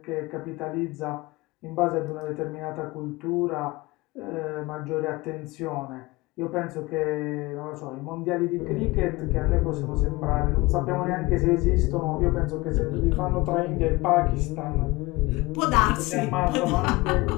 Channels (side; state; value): right; quieter; 22.0 dB